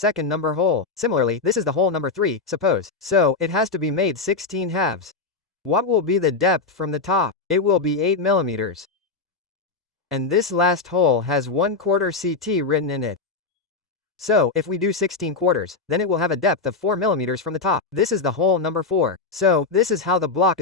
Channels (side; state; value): right; quieter; 4.2 dB